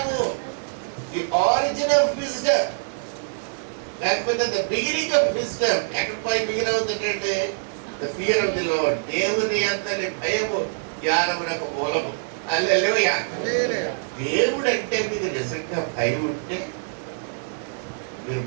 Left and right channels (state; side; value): silent; left; digital silence